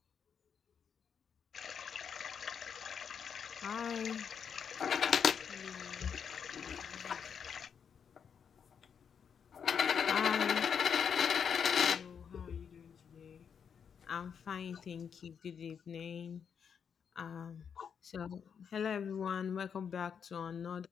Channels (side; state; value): right; quieter; 7.2 dB